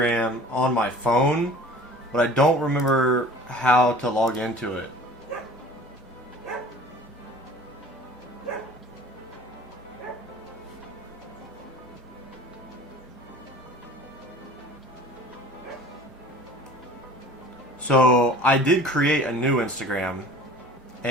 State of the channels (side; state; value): both; normal; correlation 0.45